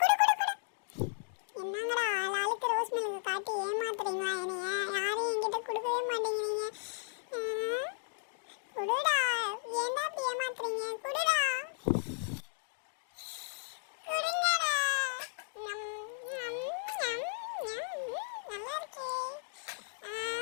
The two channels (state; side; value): silent; right; digital silence